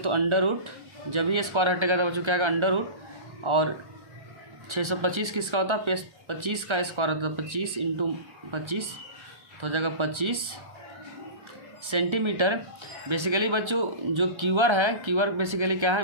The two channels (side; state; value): left; late; 1.3 ms